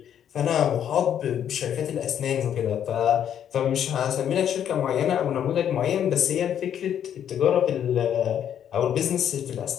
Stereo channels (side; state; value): right; quieter; 9.5 dB